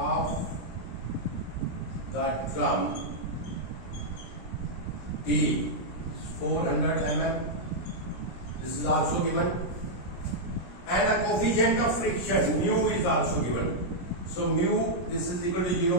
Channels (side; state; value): right; late; 17 ms